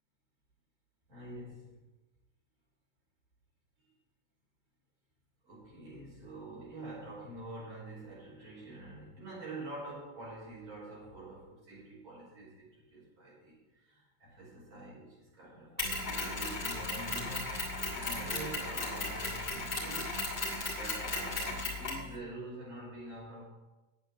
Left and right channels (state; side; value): late; left; 2.2 ms